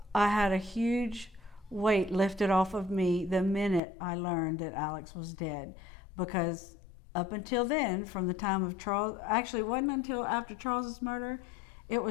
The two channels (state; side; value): drops out; right; at 3.8 s